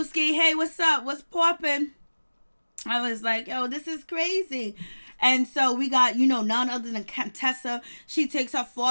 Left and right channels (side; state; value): both; inverted; correlation -1.00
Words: hey, what's up? What's poppin'? I was like, yo, this is crazy. And so we got, none other than Contessa. She takes her